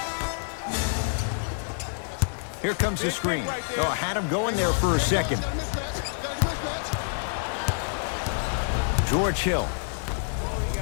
Here comes the screen. Oh, had him going there for a second. George Hill.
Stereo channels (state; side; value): silent; right; digital silence